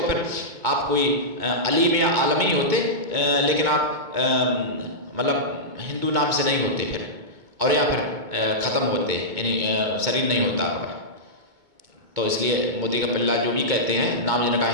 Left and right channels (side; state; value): left; late; 2.2 ms